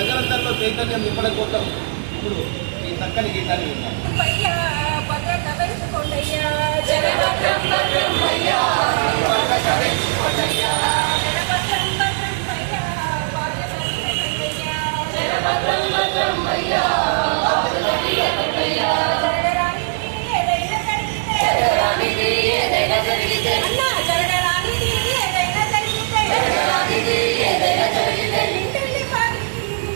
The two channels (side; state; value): left; silent; digital silence